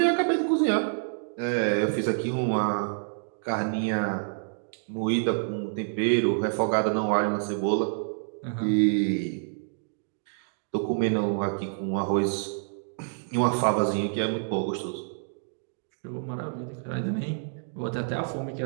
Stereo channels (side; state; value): left; silent; digital silence